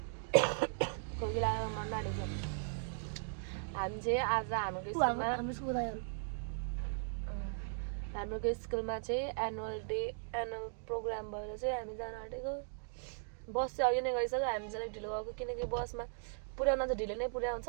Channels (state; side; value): silent; left; digital silence